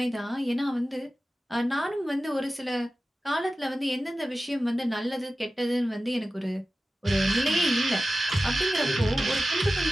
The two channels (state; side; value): normal; both; correlation 0.94